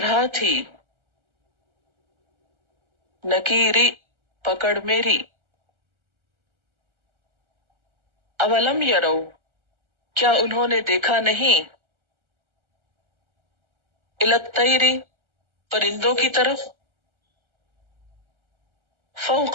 تھی، نکیری پکڑ میری، اولم یرو کیا انہوں نے دیکھا نہیں، الی الطیر پرندوں کی طرف،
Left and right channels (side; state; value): left; late; 1.4 ms